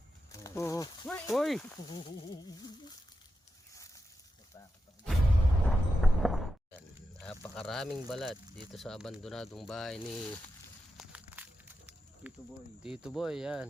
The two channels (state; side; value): normal; both; correlation 0.89